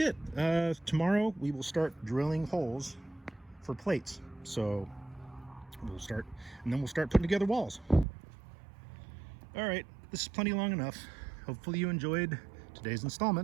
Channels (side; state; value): left; drops out; at 8.1 s